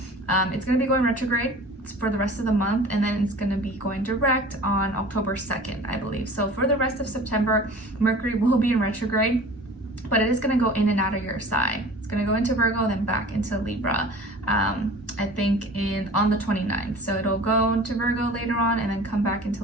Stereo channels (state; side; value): normal; both; correlation 0.42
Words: It's going to be going retrograde for the rest of the month, and then it's going to be going direct on October 2nd, I believe. So for the rest of September, Mercury will be in retrograde, but it is going to go in and out of your sign. It's going to go into Virgo, then back into Libra, I think on the 29th. So it'll go into Virgo later on and then come back